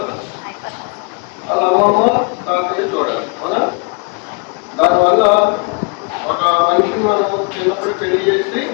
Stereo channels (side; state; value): right; quieter; 34.4 dB